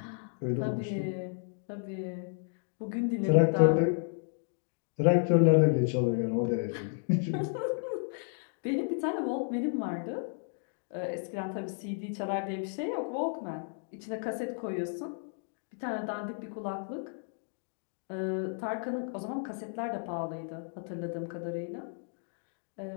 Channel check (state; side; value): silent; right; digital silence